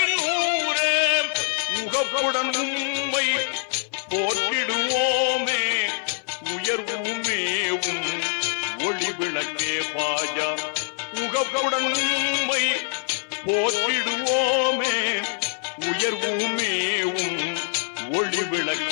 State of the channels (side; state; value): right; silent; 57 dB below the other